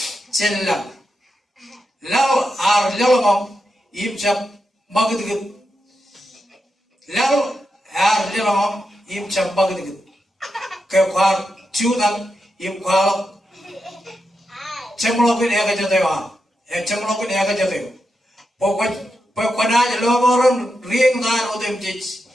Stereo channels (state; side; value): normal; both; correlation 0.87